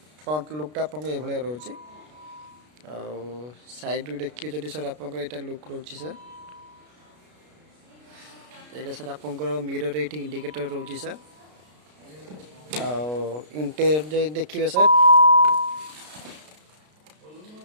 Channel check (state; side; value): late; left; 33 ms